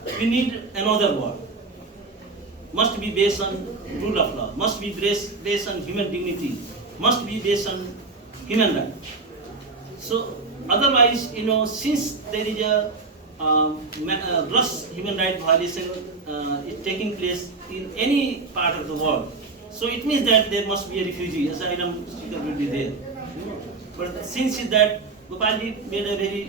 we need another world. Must be based on rule of law, must be based on human dignity, must be based on human rights. So otherwise, since there is a gross human rights violation is taking place in any part of the world, so it means that there must be a refugee, asylum seeker will be there. But since that, Gopalji made a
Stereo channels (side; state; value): left; quieter; 3.9 dB